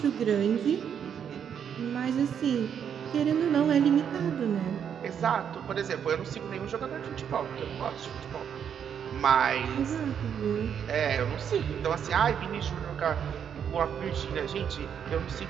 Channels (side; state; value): left; quieter; 8.1 dB